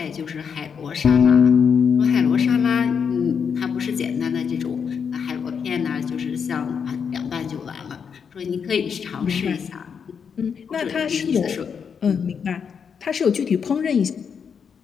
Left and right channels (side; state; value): right; quieter; 6.7 dB